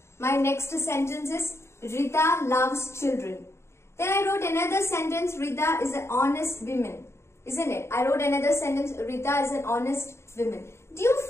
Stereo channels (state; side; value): late; right; 0.13 ms